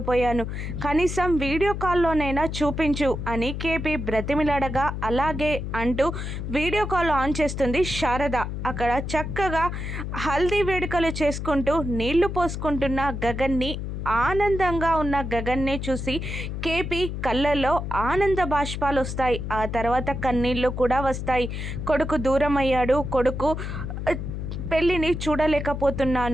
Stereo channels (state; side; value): noise; left; hum, 5 dB below the sound